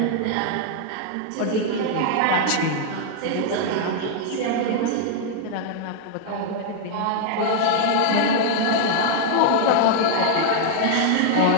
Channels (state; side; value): different; both; correlation 0.00